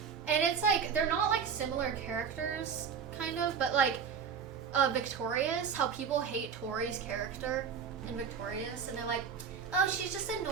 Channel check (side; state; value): left; quieter; 6.8 dB